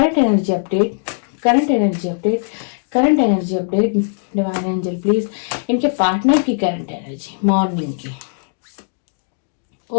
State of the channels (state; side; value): silent; right; digital silence